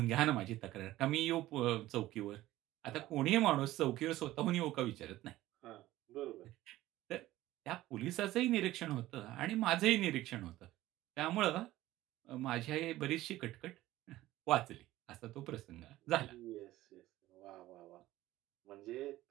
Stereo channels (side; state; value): left; quieter; 16.0 dB